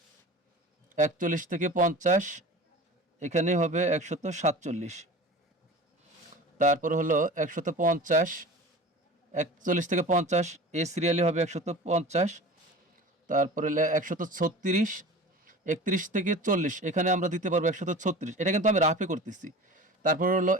৪১ থেকে ৫০ এখানে হবে ১৪৭, তারপর হলো ১৫০, ৪১ থেকে ৫০ এই সিরিয়ালে হবে ১৫০, তারপরে ১৩৬, ৩১ থেকে ৪০ এখানে আমরা দিতে পারবো ১৩৬, এটা কিন্তু আমি রাফে করতেছি। তারপর হলো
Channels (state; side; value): normal; both; correlation 0.37